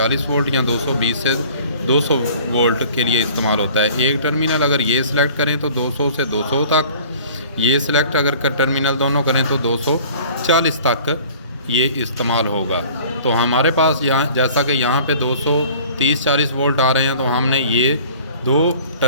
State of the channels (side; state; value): both; inverted; correlation -0.48